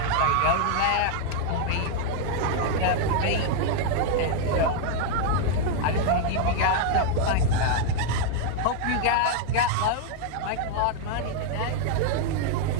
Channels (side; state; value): both; different; correlation 0.00